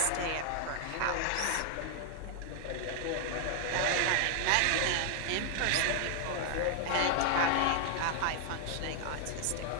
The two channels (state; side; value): different; both; correlation 0.00